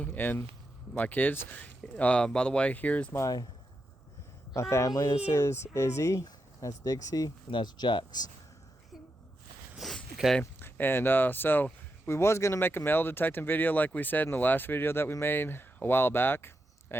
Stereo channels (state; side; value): normal; both; correlation 0.86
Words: and my kids. By the way, here's my family. This is Izzy, that's Dixie, and that's Jax. Okay, and so we was gonna make a metal detecting video like we said in the last video that we made a while back,